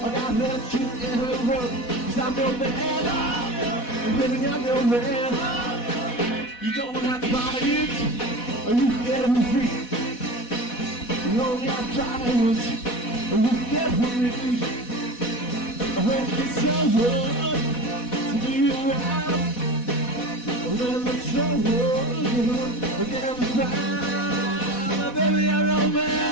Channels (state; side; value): late; right; 4.1 ms